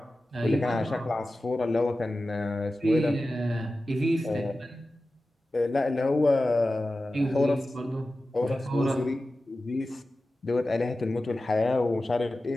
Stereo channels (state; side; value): normal; both; correlation 0.94